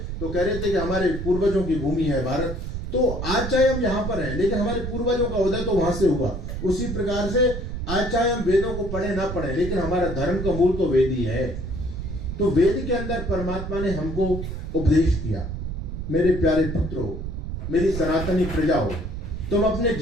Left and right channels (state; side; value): noise; right; rumble, 5 dB below the sound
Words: तो कह रहे थे कि हमारे पूर्वजों की भूमि है भारत। तो आज चाहे हम यहाँ पर हैं, लेकिन हमारे पूर्वजों का उदय तो वहां से हुआ। उसी प्रकार से आज चाहे हम वेदों को पढ़े ना पढ़े, लेकिन हमारा धर्म का मूल तो वेद ही है। तो वेद के अंदर परमात्मा ने हमको उपदेश किया, मेरे प्यारे पुत्रों, मेरी सनातनी प्रजाओं, तुम अपने